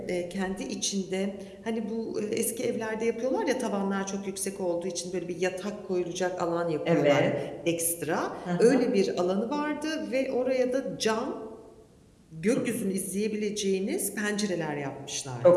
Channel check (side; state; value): both; identical; correlation 1.00